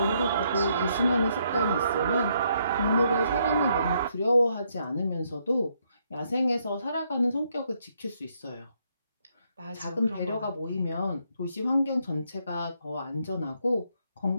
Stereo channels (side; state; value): both; inverted; correlation -0.74